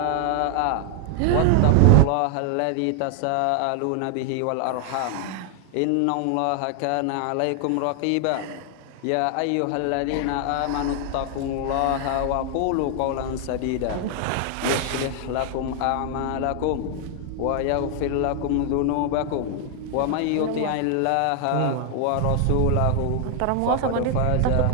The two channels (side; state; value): both; different; correlation 0.00